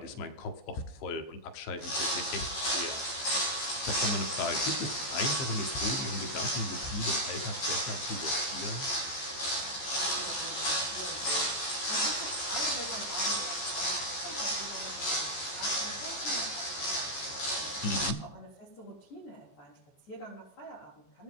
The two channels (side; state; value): right; late; 14 ms